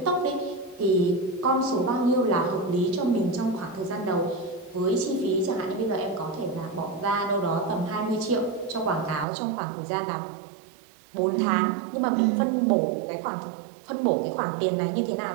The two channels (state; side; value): drops out; left; at 9.2 s